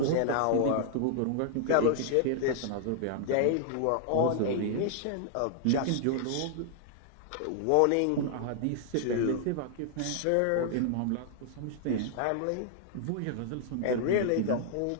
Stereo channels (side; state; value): both; different; correlation -0.01